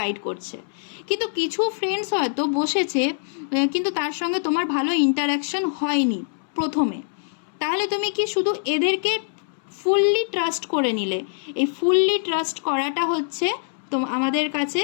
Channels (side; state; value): right; silent; 63 dB below the other